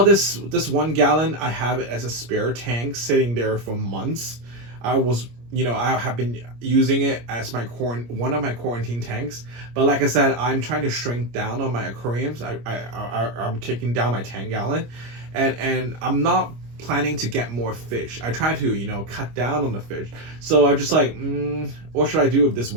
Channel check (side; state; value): left; late; 25 ms